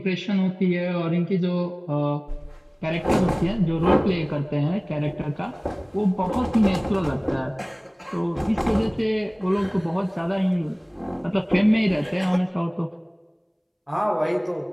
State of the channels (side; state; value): both; identical; correlation 1.00